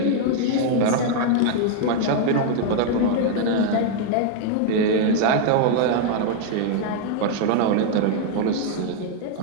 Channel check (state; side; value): different; both; correlation 0.00